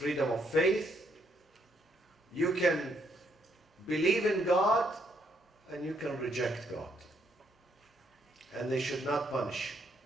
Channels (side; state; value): both; normal; correlation 0.73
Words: freedom of faith. You can believe in God and you can reject God. And they should not punish you.